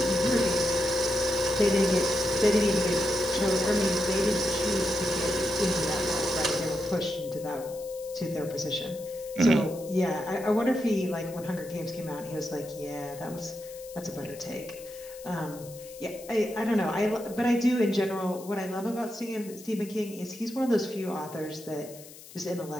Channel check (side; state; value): left; noise; hiss, 18 dB below the sound